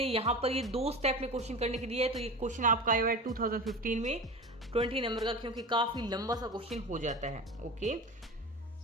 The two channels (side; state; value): both; normal; correlation 0.31